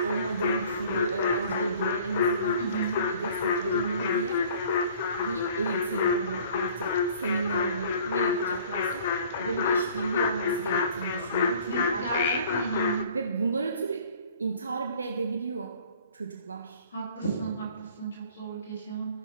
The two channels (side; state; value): both; inverted; correlation -0.51